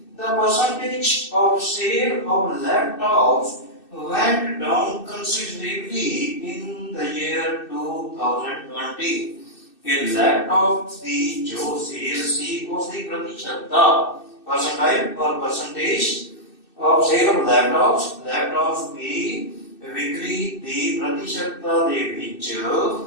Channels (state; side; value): late; right; 2.6 ms